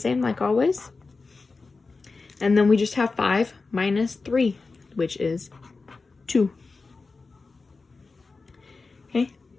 like always. And then we just have 5 minus 3, which is 2. Okay,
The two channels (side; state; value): right; quieter; 4.0 dB